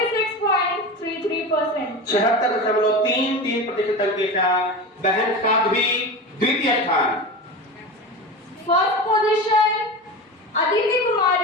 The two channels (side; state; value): both; normal; correlation 0.27